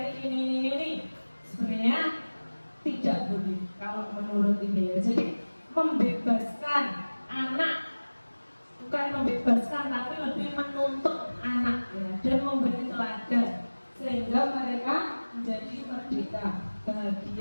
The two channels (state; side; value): inverted; both; correlation -1.00